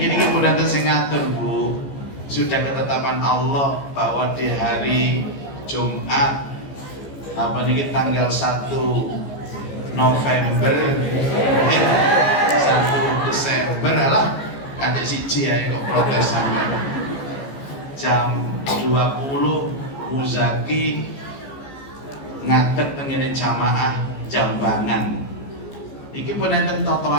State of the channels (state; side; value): late; right; 15 ms